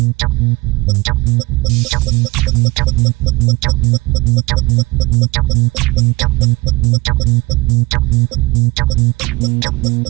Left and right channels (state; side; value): quieter; left; 22.7 dB